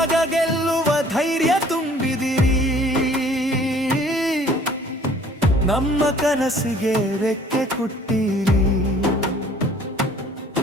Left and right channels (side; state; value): both; normal; correlation 0.54